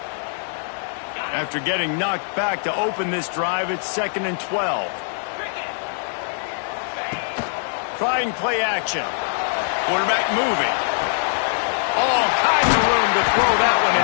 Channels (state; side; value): silent; right; 64 dB below the other